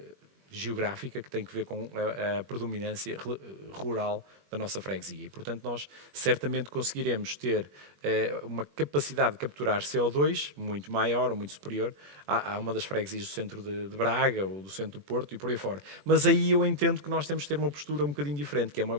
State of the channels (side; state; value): left; late; 21 ms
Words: geográfica que tem que ver com a predominância rural da nossa freguesia e, portanto, nós certamente conseguiremos ter uma capacidade de capturar CO2 muito maior ou muito superior a uma das freguesias do centro de Braga ou do centro do Porto e por aí fora. Mas aí eu entendo que nós temos de ter uma postura um bocadinho diferente, que é uma